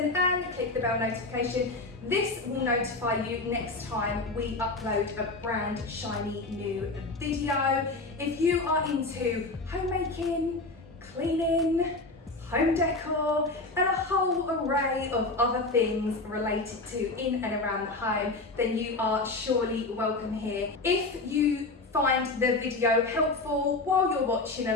and click the bell notification. This will notify you next time we upload a brand shiny new video. If you are into homemaking, cleaning, home decor, and a whole array of other things related to in and around the home, then you are surely welcome here. If you find the video helpful while you're watching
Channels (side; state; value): right; quieter; 3.2 dB